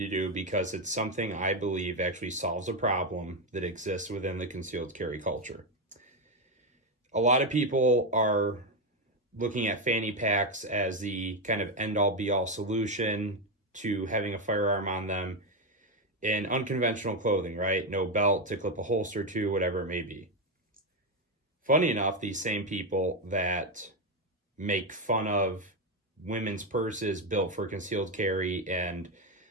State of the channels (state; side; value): normal; both; correlation 0.08